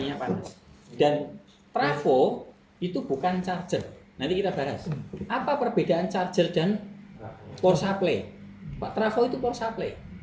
panas. Dan trafo itu bukan charger. Nanti kita bahas. Apa perbedaan charger dan power supply? Pak, trafo itu power supply,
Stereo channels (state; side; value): identical; both; correlation 1.00